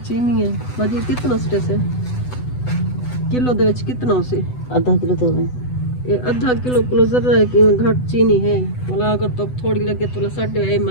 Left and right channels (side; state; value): right; late; 8.0 ms